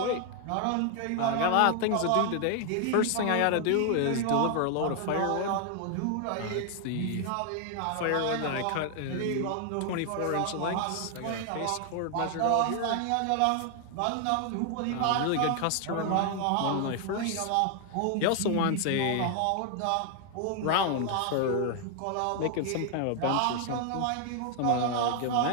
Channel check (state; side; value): different; both; correlation 0.00